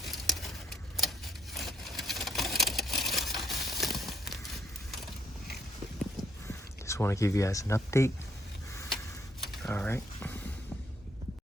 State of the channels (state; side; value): normal; both; correlation 0.70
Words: Just want to give you guys an update. All right.